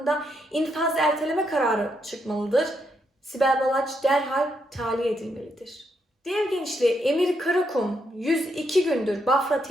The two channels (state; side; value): normal; both; correlation 0.78